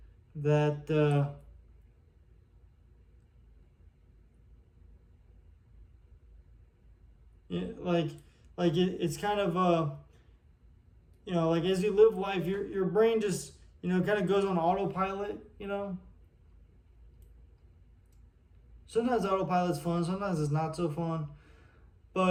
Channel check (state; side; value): identical; both; correlation 1.00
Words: that it's kind of like as you live life, your brain just kind of goes on autopilot. Sometimes autopilot's fun, sometimes it's not so fun,